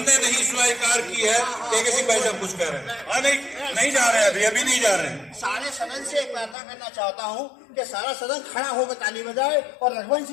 नहीं स्वीकार की है। किसी भाई साहब कुछ कह रहे हैं? नहीं जा रहे हैं, अभी नहीं जा रहे हैं। सारे सदन से एक वार्ता करना चाहता हूं कि सारा सदन खड़ा होकर ताली बजाए और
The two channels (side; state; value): right; drops out; at 6.6 s